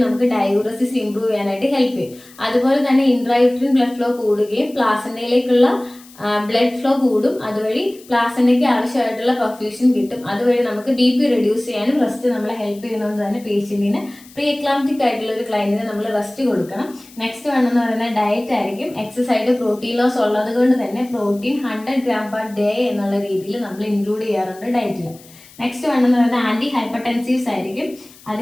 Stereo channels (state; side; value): noise; left; hiss, 23 dB below the sound